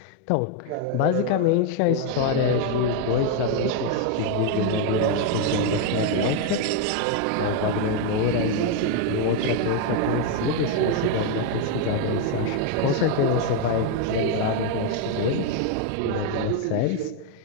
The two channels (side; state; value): both; different; correlation 0.01